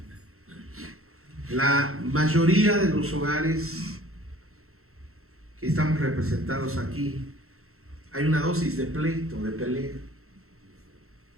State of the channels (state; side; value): late; left; 0.63 ms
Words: la mayoría de los hogares que estamos representados aquí, hay una dosis de pleito, de pelea,